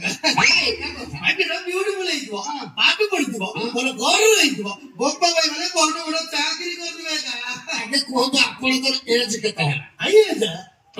ବ୍ୟୁଟିଫୁଲ ହେଇଥିବ ପାଠ ପଢିଥିବ ଭଲ ଘର ହେଇଥିବ ବୋପା ଭାଇ ମାନେ ବଡ ବଡ ଚାକିରି କରିଥିବେ ଆଗେ କୁହନ୍ତୁ ଆପଣଙ୍କର ଏଜ୍ କେତେ ହେଲା ଆଜ୍ଞା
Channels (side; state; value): both; identical; correlation 1.00